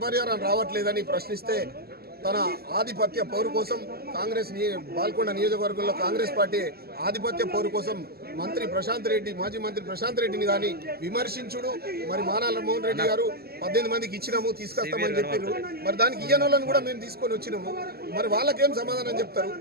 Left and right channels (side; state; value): left; late; 0.46 ms